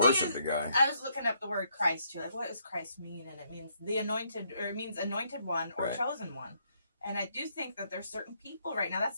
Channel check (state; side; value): inverted; both; correlation -0.73